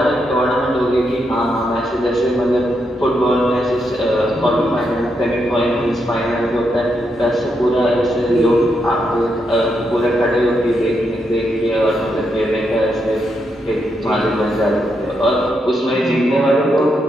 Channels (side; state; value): both; normal; correlation 0.81